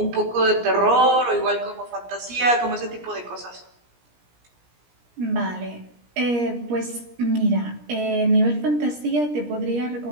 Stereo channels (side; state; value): left; late; 17 ms